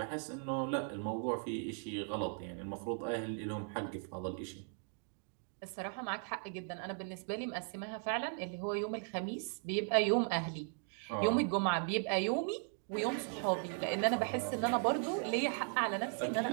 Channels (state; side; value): silent; left; 53 dB below the other